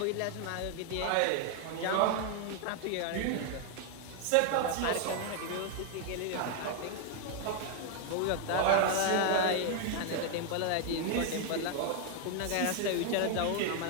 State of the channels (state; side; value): different; both; correlation 0.00